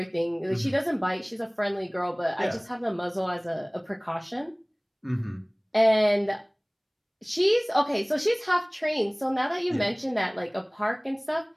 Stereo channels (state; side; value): identical; both; correlation 1.00